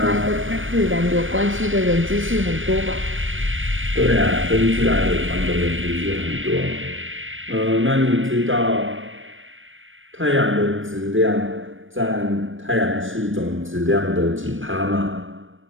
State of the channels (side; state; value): left; late; 0.57 ms